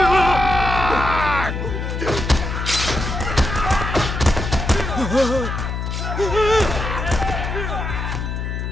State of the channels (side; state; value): left; noise; hum, 4 dB below the sound